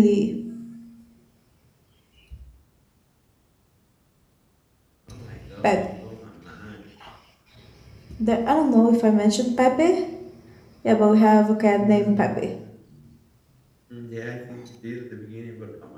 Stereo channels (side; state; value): both; identical; correlation 1.00